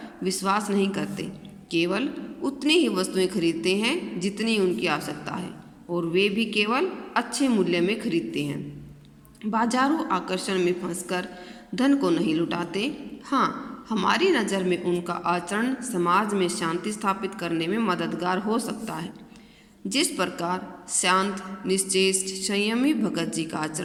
विश्वास नहीं करते, केवल उतनी ही वस्तुएं खरीदते हैं जितनी उनकी आवश्यकता है और वे भी केवल अच्छे मूल्य में खरीदते हैं। बाजारू आकर्षण में फंसकर धन को नहीं लुटाते। हाँ, हमारी नज़र में उनका आचरण समाज में शांति स्थापित करने में मददगार हो सकता है। जिस प्रकार शांत, निश्चेष्ट, संयमी भगत जी का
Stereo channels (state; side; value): identical; both; correlation 1.00